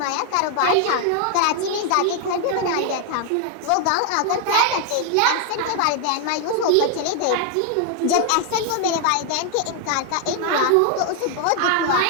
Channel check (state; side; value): different; both; correlation 0.00